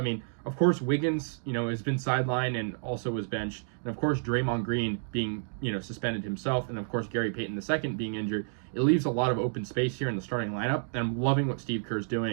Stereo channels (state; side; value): silent; left; digital silence